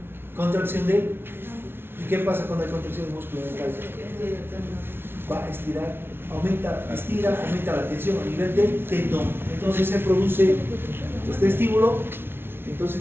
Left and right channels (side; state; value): left; late; 0.11 ms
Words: Contracción de. ¿Y qué pasa con la contracción del músculo dental? Va a estirar, aumenta la tensión a nivel del tendón. Entonces se produce este estímulo.